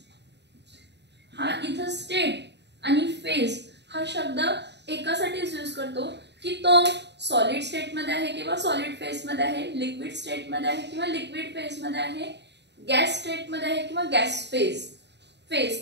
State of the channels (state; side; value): late; left; 0.50 ms